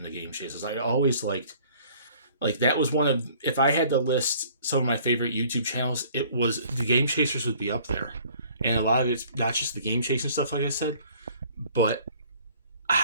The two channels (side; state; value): both; inverted; correlation -0.54